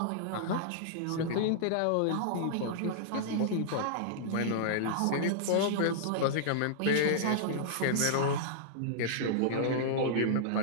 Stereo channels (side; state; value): both; different; correlation -0.02